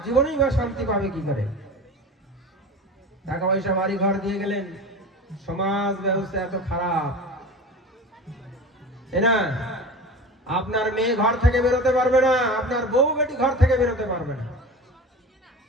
জীবনেই বা শান্তি পাবে কি করে? টাকা পয়সা বাড়ি ঘর দিয়ে গেলেন, সমাজ ব্যবস্থা এত খারাপ, না আপনার মেয়ে ঘর থেকে বেরোতে পারবে না, আপনার বউ বেটি ঘর থেকে বেরোতে পারবে না।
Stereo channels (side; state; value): both; normal; correlation 0.34